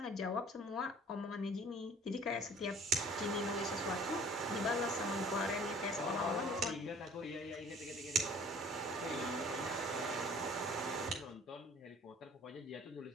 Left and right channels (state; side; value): normal; both; correlation 0.51